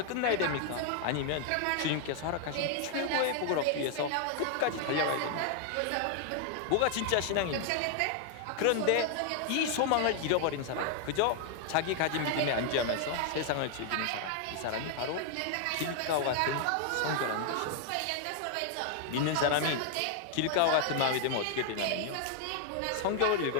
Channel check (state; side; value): different; both; correlation 0.00